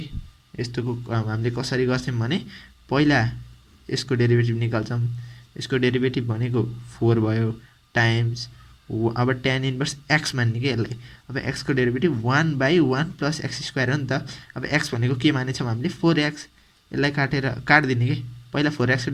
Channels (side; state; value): both; identical; correlation 1.00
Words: यस्तोको हामीले कसरी गर्थ्यौँ भने, पहिला यसको डेरिभेटिभ निकाल्छौँ, यसको डेरिभेटिभ भनेको 4 भयो टाइम्स, अब tan इन्भर्स एक्स मान्ने कि यसलाई। अब एक्सको derivative 1 by 1 plus x square हो नि त। अब एक्स भनेको के मानेछौँ हामीले, 4x, यसलाई काटेर काटिदिने कि पहिला 4x को